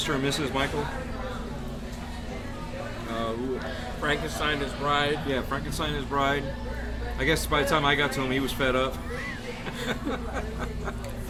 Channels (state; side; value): identical; both; correlation 1.00